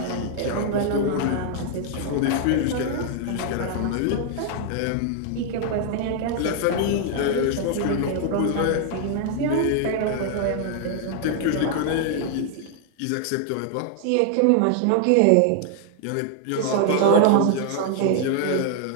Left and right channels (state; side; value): different; both; correlation 0.00